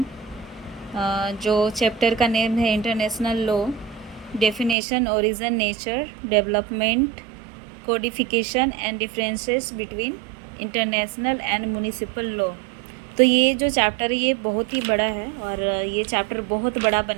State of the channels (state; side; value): drops out; left; at 4.8 s